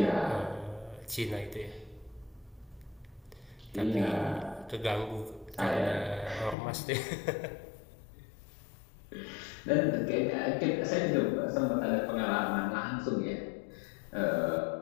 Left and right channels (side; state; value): right; drops out; at 6.6 s